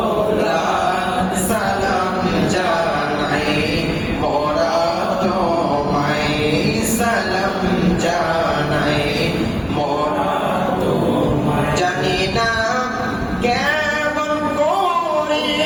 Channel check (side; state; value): both; identical; correlation 1.00